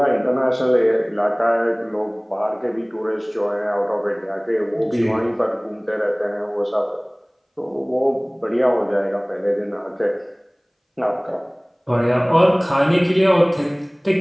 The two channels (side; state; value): both; identical; correlation 1.00